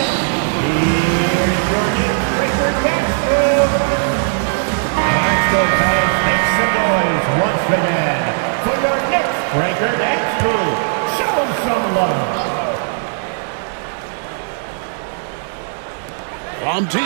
Make some noise once again for your Knicks breaker next crew. Show them some love. From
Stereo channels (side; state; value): left; silent; digital silence